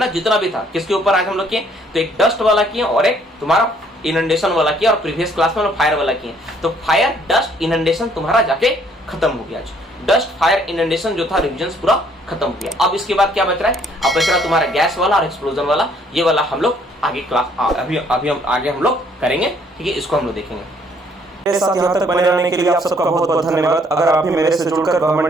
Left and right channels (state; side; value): normal; both; correlation 0.64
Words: जितना भी था, किसके ऊपर आज हम लोग किए? तो एक डस्ट वाला किए और एक तुम्हारा इनंडेशन वाला किया, और प्रीवियस क्लास में हम फायर वाला किए। तो फायर, डस्ट, इनंडेशन तुम्हारा जाके खत्म हो गया। डस्ट, फायर, इनंडेशन जो था रिविजन पूरा खत्म हो गया। अब इसके बाद क्या बच रहा है? अब बच रहा है तुम्हारा गैस वाला और एक्सप्लोजन वाला। ये वाला हम लोग आगे क्लास अभी हम आगे हम लोग करेंगे, ठीक है, इसको हम लोग देखेंगे। मेरे साथ यहाँ तक बने रहने के लिए आप सबका बहुत बहुत धन्यवाद। अगर आप भी मेरे से जुड़कर